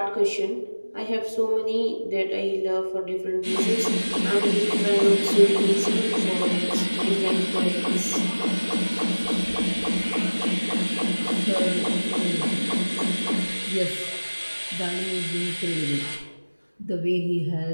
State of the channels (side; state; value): both; inverted; correlation -1.00